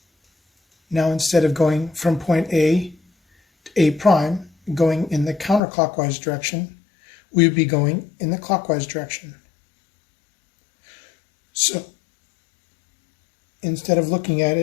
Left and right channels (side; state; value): right; drops out; at 5.6 s